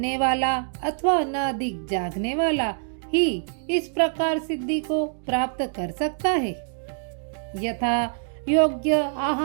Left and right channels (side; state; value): left; silent; digital silence